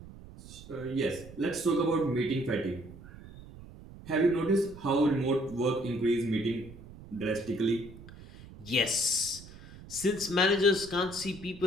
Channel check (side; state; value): right; noise; rumble, 17 dB below the sound